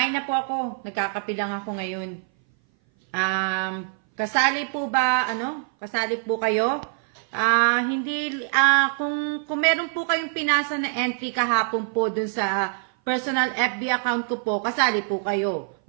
na po ako. Nagkakape lang ako ngayon. Kasali po ba, kasali po kayo? Kung meron po kayong pinasa na entry kahapon po dun sa personal FB account ko po, kasali po kayo.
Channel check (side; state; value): left; silent; 59 dB below the other